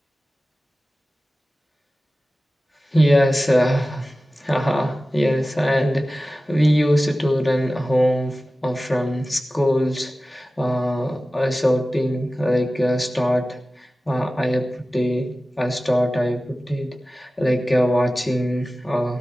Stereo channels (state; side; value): normal; both; correlation 0.96